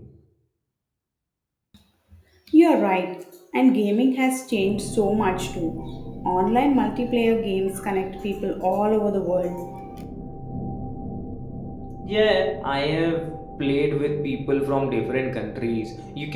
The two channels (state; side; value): identical; both; correlation 1.00